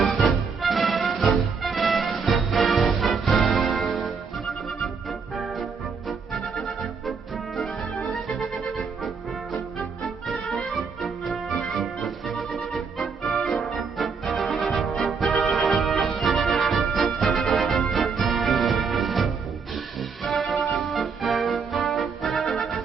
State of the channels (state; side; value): quieter; left; 5.4 dB